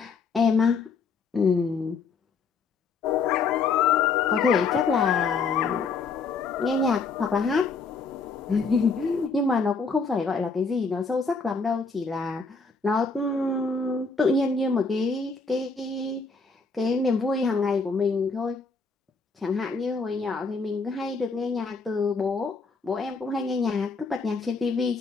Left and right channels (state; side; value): quieter; right; 4.6 dB